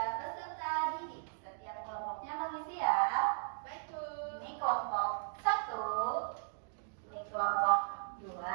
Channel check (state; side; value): silent; left; digital silence